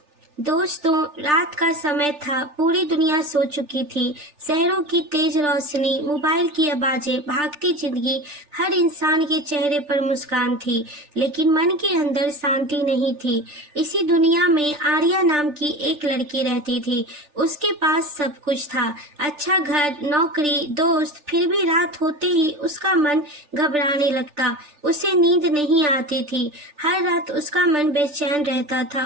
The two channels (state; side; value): late; left; 3.4 ms